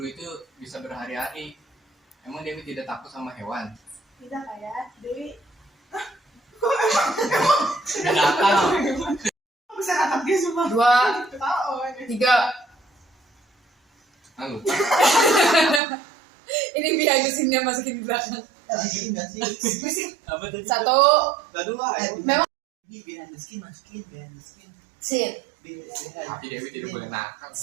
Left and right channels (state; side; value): drops out; left; at 15.8 s